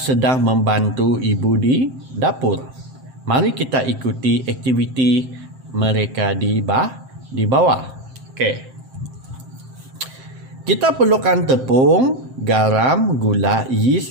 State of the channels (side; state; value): left; late; 7.6 ms